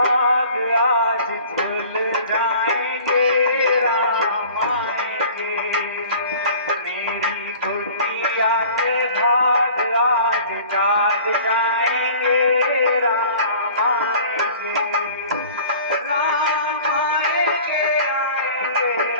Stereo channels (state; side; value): inverted; both; correlation -0.46